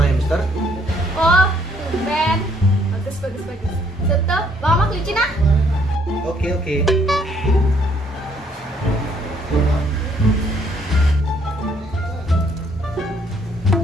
hamster. Oh, tumben. Bagus. Tutup, bawa kelinci nah. Oke.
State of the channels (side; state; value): both; normal; correlation 0.66